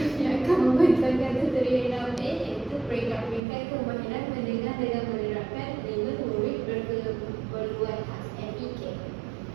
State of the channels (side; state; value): left; drops out; at 3.4 s